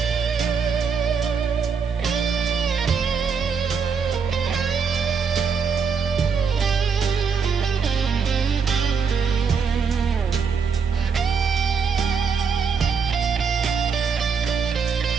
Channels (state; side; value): quieter; left; 5.9 dB